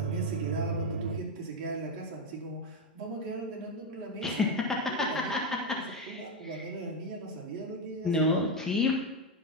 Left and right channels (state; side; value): normal; both; correlation 0.07